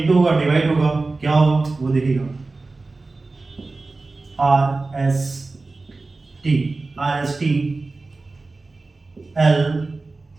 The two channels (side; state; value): left; quieter; 3.5 dB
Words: होगा डिवाइड होगा क्या होगा वो देखिएगा, R S T L